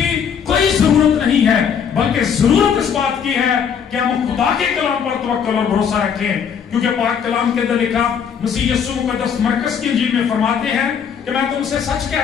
कोई जरूरत नहीं है, बल्कि जरूरत इस बात की है कि हम खुदा के कलाम पर तवक्कुल और भरोसा रखें। क्योंकि पाक कलाम के अंदर लिखा, मसीह यीशु मुकद्दस मरकस की इंजील में फरमाते हैं कि मैं तुमसे सच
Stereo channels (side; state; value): right; quieter; 7.4 dB